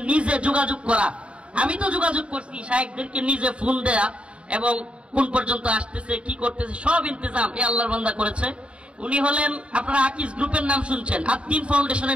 নিজে যোগাযোগ করা, আমি তো যোগাযোগ করছি, শায়েখদেরকে নিজে ফোন দেয়া এবং কোন পর্যন্ত আসতেছে কি করতেছে সব ইন্তজাম এই আল্লাহর বান্দা করেছে। উনি হলেন, আপনারা আকিজ গ্রুপের নাম শুনছেন, আদ্দিন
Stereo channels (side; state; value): left; late; 0.059 ms